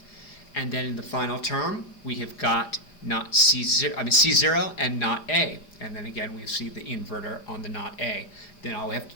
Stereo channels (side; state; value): right; late; 4.9 ms